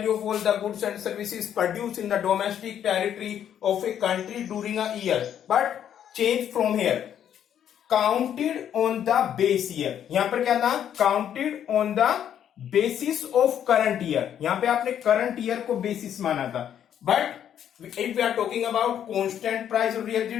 of all the goods and services produced in the domestic territory of a country during a year. But change from here. Counted on the base year. यहाँ पर क्या था? Counted on the basis of current year. यहाँ पे आपने current year को basis माना था. But if we are talking about constant price or real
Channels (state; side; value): quieter; right; 9.7 dB